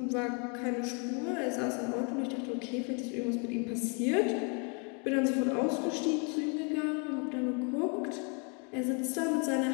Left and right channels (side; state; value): right; quieter; 35.2 dB